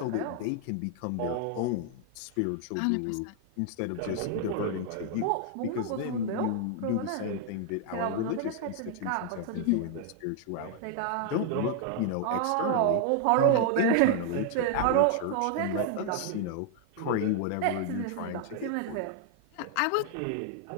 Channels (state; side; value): different; both; correlation 0.00